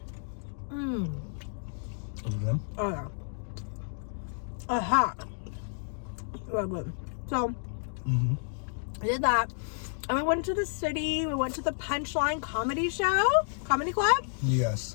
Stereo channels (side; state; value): right; silent; digital silence